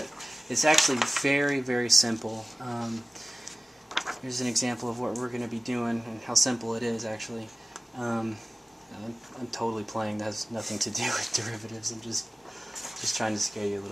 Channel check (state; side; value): normal; both; correlation 0.97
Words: it's actually very, very simple. Here's an example of what we're going to be doing and how simple it is actually. I'm totally playing. That has nothing to do with derivatives. I'm just trying to scare you a